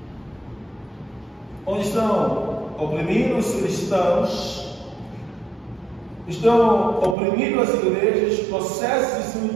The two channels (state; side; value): drops out; left; at 7.2 s